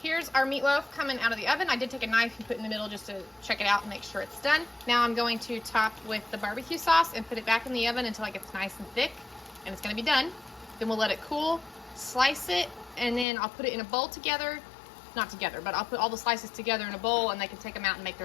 here's our meatloaf coming out of the oven. I did take a knife and put it in the middle just to check it out and make sure it's done. Now I'm going to top with the barbecue sauce and put it back in the oven until it gets nice and thick, and it's gonna be done. Then we'll let it cool, slice it, and then I'll put it in a bowl together. Not together, but I'll put all the slices together in a bowl and they can take them out and make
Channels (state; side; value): drops out; right; at 13.2 s